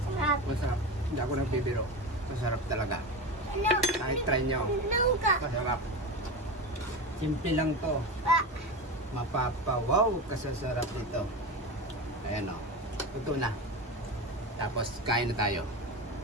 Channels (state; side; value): normal; both; correlation 0.23